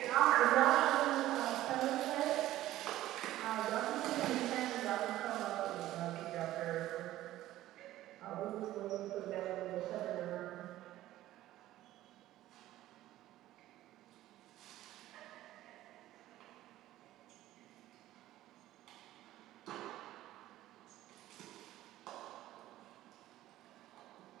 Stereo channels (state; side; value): quieter; left; 14.7 dB